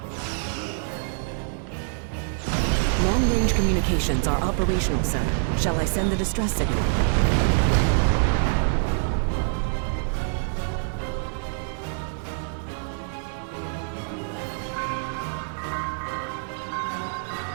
Long-range communications are operational, sir. Shall I send the distress signal?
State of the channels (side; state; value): left; silent; 61 dB below the other